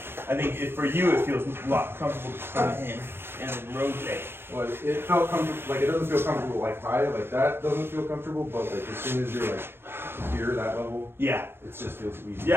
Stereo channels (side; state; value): left; late; 0.11 ms